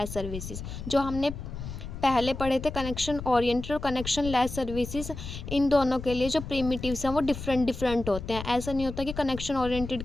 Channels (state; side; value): noise; left; rumble, 9 dB below the sound